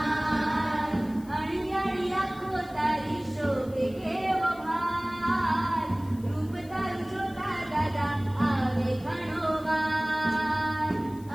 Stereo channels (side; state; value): left; noise; hiss, 25 dB below the sound